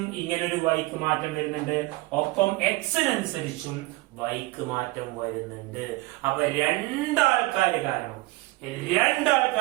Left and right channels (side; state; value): left; quieter; 20.9 dB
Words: ഇങ്ങനൊരു വൈക്ക് മാറ്റം വരുന്നുണ്ട്, ഒപ്പം എക്സിനനുസരിച്ചും വൈക്ക് മാറ്റം വരുന്നുണ്ട്. അപ്പൊ രണ്ടാൾക്കാര്